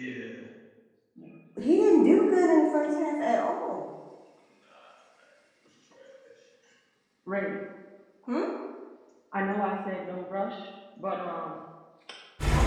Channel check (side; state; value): both; identical; correlation 1.00